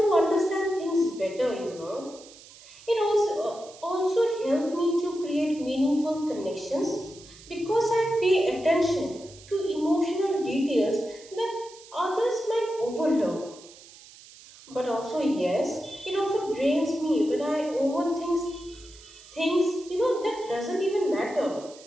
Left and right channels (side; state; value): right; noise; hiss, 21 dB below the sound